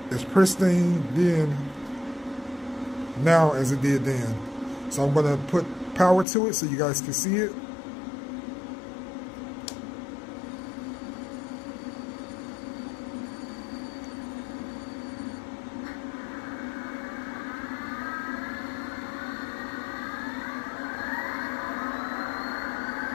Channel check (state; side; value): drops out; right; at 6.2 s